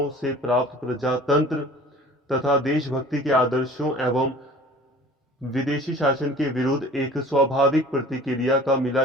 से प्राप्त प्रजातंत्र तथा देशभक्ति के आदर्शों एवं विदेशी शासन के विरुद्ध एक स्वाभाविक प्रतिक्रिया का मिला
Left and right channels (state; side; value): normal; both; correlation 0.46